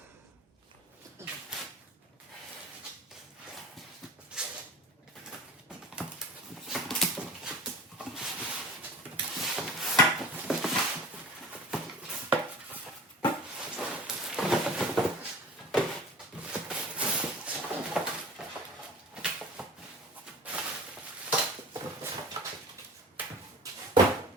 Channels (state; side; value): normal; both; correlation 0.39